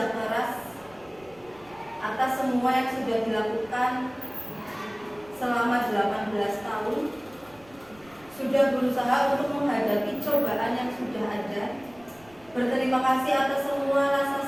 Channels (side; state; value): right; noise; rumble, 27 dB below the sound